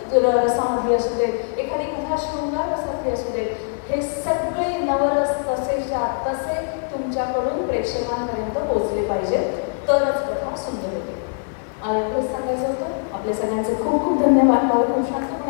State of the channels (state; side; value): silent; right; 64 dB below the other